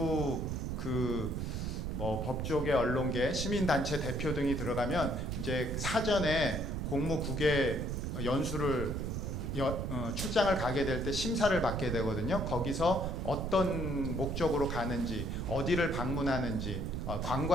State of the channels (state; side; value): noise; right; rumble, 3 dB below the sound